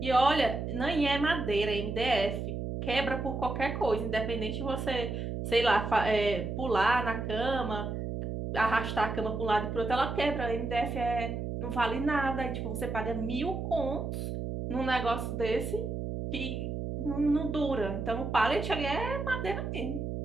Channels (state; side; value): noise; right; hum, 4 dB below the sound